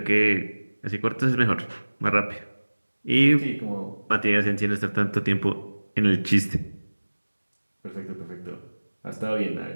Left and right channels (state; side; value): inverted; both; correlation -1.00